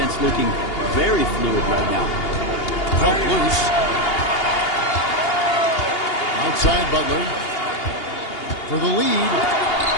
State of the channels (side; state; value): right; late; 2.8 ms